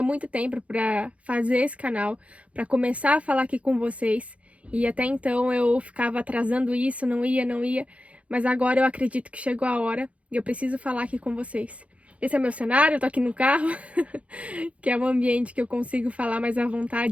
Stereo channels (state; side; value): late; left; 0.064 ms